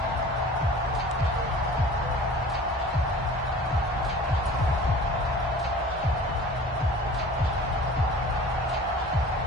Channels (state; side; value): normal; both; correlation 0.43